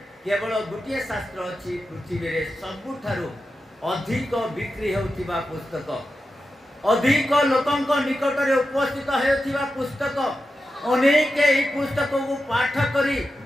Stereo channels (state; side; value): normal; both; correlation 0.90